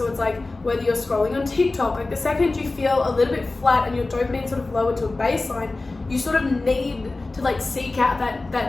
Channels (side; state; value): right; quieter; 3.3 dB